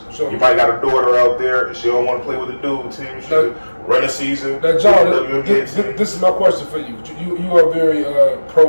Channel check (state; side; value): inverted; both; correlation -1.00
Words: You might got a daughter out there and she don't want to play with the dude team. She can run a season. Now, John, this is my question for you. You are very